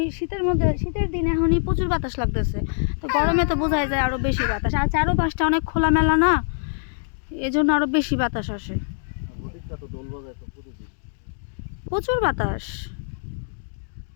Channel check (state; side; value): silent; right; digital silence